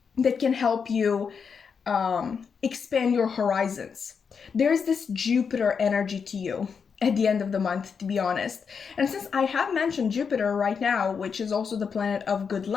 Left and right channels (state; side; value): quieter; right; 6.1 dB